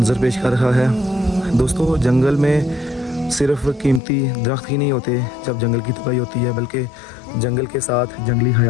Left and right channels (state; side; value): drops out; right; at 4.0 s